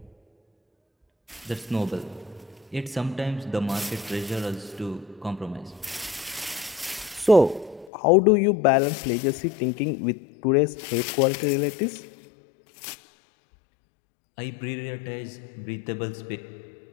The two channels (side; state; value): right; drops out; at 7.9 s